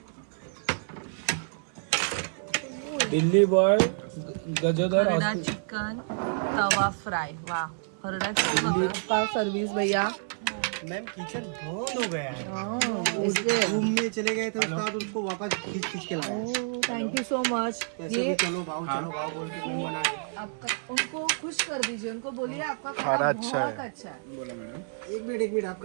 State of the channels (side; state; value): left; silent; 59 dB below the other